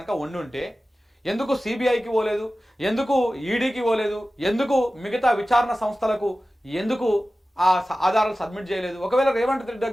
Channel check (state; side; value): normal; both; correlation 0.95